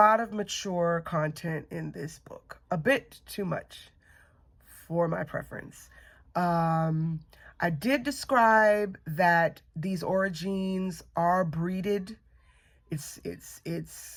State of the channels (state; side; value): identical; both; correlation 1.00